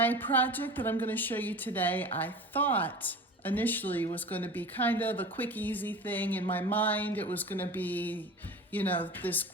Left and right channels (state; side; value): normal; both; correlation 0.36